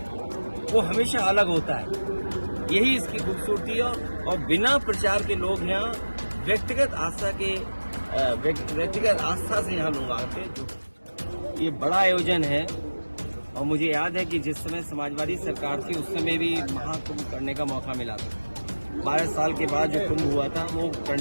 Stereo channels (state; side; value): inverted; both; correlation -1.00